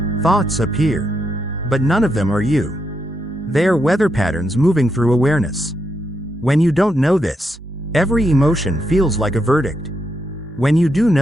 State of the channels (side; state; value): both; normal; correlation 0.81